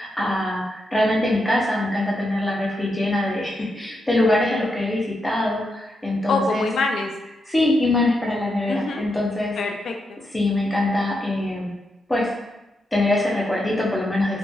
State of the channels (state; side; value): normal; both; correlation 0.84